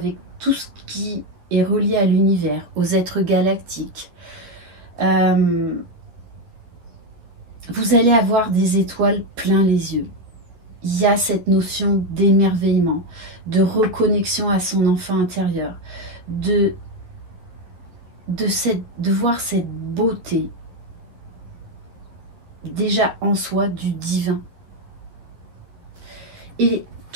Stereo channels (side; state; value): left; late; 12 ms